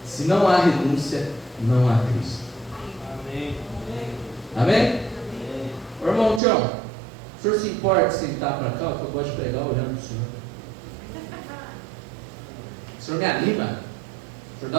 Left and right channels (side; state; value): left; drops out; at 6.4 s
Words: se não há renúncia, não há Cristo. Amém. Amém? Ô, irmão Tião, o senhor se importa de sentar para cá? Que eu gosto de pregar olhando para o senhor. O senhor me anima. O senhor